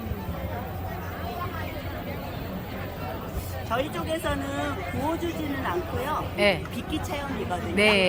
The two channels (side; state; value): both; identical; correlation 1.00